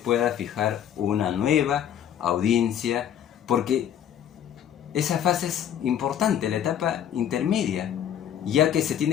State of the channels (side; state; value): right; quieter; 9.8 dB